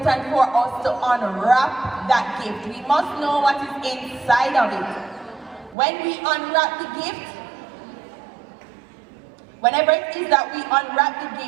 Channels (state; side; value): drops out; left; at 5.8 s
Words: for us to unwrap that gift. We must know what is inside of it. When we unwrap the gift, whenever it is that we unwrap the